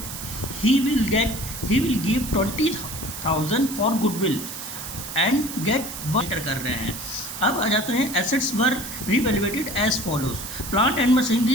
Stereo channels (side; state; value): right; noise; hiss, 9 dB below the sound